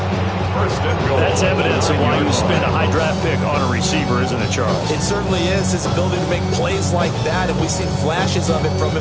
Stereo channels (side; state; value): both; identical; correlation 1.00